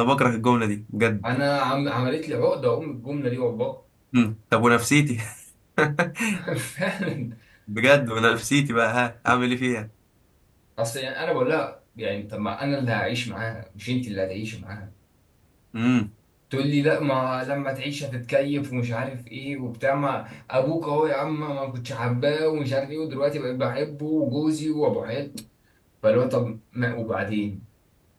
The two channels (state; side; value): identical; both; correlation 1.00